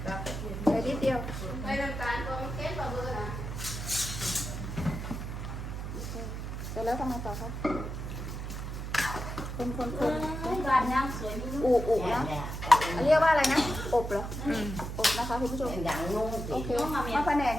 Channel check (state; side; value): noise; right; hum, 6 dB below the sound